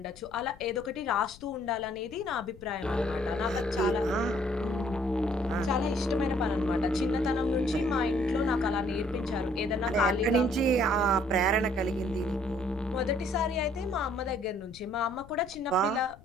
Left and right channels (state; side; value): noise; left; rumble, 21 dB below the sound